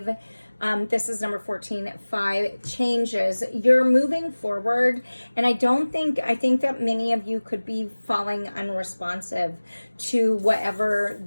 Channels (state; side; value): inverted; both; correlation -1.00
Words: This is number 14, 5 changes. You're moving forward, and I think that many of you could be falling unresponsive to whatever